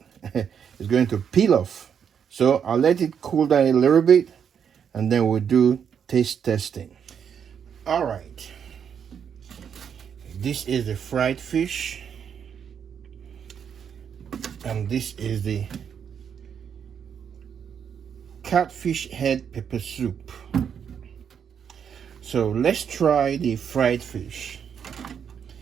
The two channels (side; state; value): left; quieter; 7.7 dB